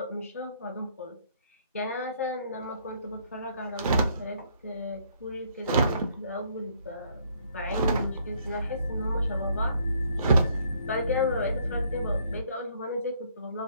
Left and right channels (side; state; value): both; inverted; correlation -0.66